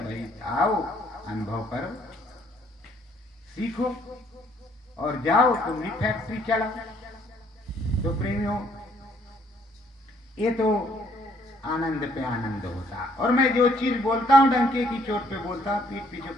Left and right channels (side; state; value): both; normal; correlation 0.65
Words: भाई, आओ अनुभव करो, सीखो और जाओ तुम भी फैक्ट्री चलाओ। तो प्रेमियों, ये तो आनंद पे आनंद होता। और मैं जो चीज बोलता हूँ डंके की चोट पे बोलता हूँ, पीठ पीछे